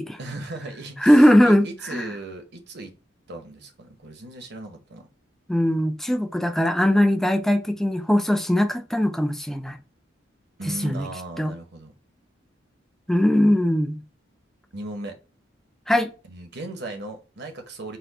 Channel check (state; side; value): normal; both; correlation 0.95